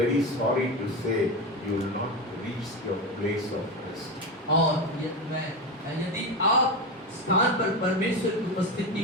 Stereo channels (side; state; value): both; normal; correlation 0.18